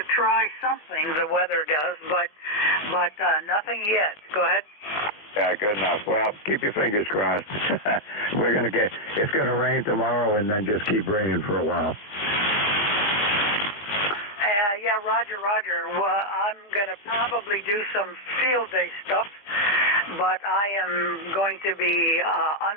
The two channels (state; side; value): late; right; 20 ms